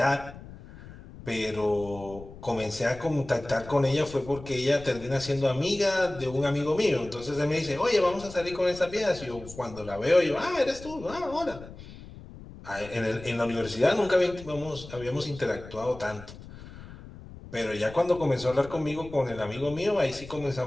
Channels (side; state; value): left; noise; rumble, 16 dB below the sound